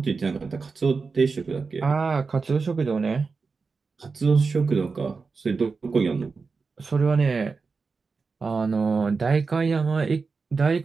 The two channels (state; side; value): quieter; left; 4.6 dB